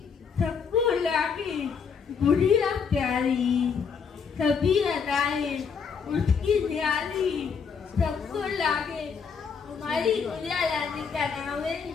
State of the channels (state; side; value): quieter; right; 6.1 dB